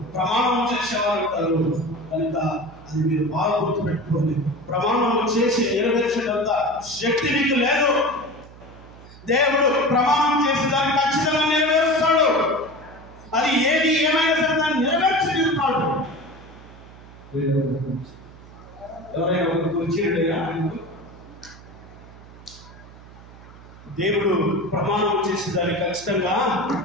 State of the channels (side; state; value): right; noise; hum, 20 dB below the sound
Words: ప్రమాణం చేసేవారు ఉంటారు. కనుక అది మీరు బాగా గుర్తుపెట్టుకోండి. ప్రమాణం చేసి నెరవేర్చేటంత శక్తి మీకు లేదు. దేవుడు ప్రమాణం చేసి దాన్ని ఖచ్చితంగా నెరవేరుస్తాడు. అది ఏది ఏమైనా సరే దాన్ని నెరవేర్చి తీరుతాడు. ఎవరైనా వచ్చిండేగా దేవుడు ప్రమాణం చేసి దాన్ని ఖచ్చితంగా